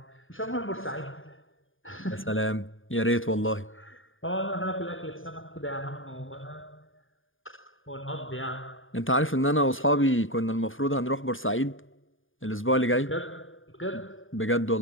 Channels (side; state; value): right; late; 0.58 ms